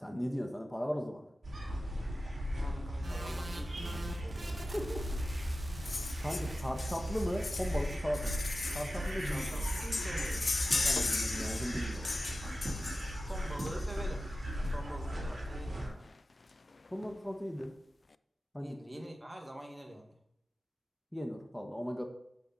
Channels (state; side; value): normal; both; correlation 0.94